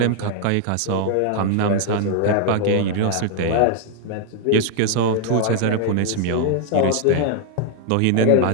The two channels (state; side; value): different; both; correlation 0.00